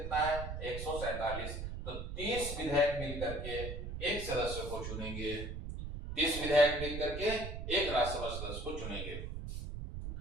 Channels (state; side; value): noise; right; rumble, 6 dB below the sound